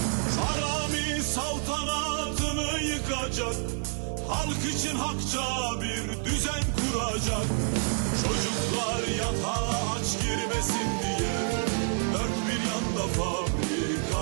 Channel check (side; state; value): left; silent; 59 dB below the other